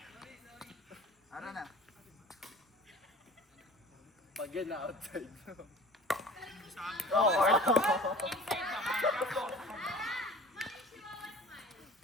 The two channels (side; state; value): both; normal; correlation 0.43